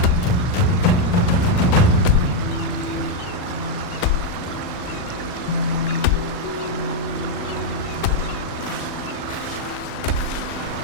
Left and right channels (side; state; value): right; late; 40 ms